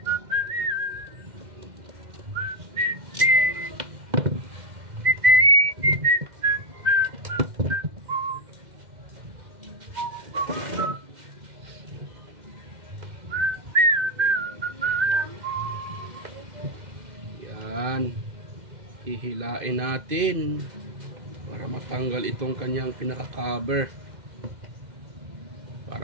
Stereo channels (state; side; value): late; left; 2.1 ms